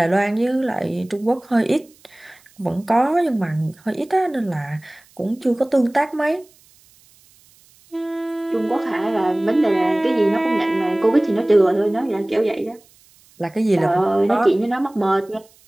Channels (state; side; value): noise; right; hiss, 30 dB below the sound